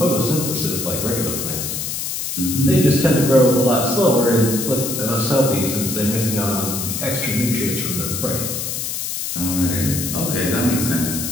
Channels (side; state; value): left; noise; hiss, 4 dB below the sound